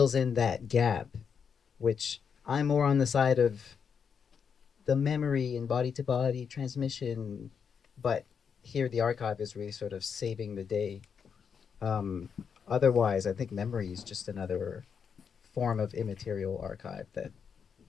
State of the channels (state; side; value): quieter; right; 6.7 dB